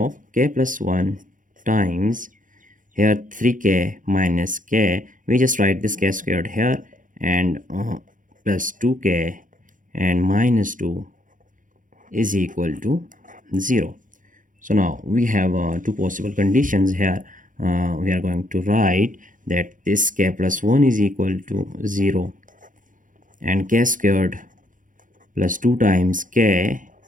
k plus 1 times here 3k minus k, we just write this k squared here and plus 2k and minus 2 is equal to 0. So now we have two possible conditions here. We are going to write that this k plus 1 is equal to 0 and k squared plus 2 times k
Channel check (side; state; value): left; late; 0.38 ms